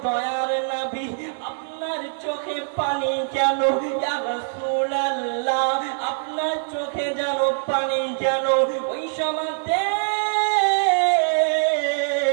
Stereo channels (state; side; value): silent; left; digital silence